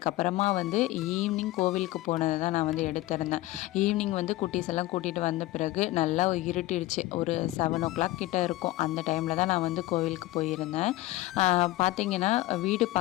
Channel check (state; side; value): quieter; right; 17.5 dB